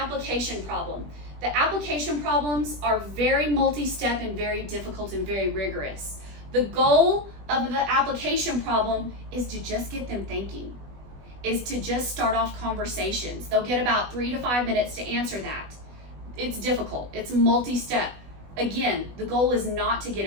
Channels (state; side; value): late; left; 20 ms